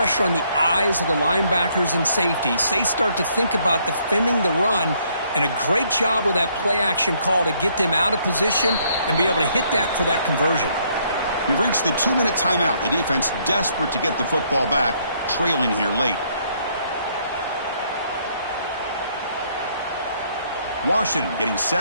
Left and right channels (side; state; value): both; inverted; correlation -0.68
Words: on the eyes of the linebackers and safeties. They start to think about defending the run, and a great job with that play-action call to get them out of position and be able to hit that for that conversion. We've reached the 2-minute timeout. The defense desperate to get the football back, trailing here late. Washington getting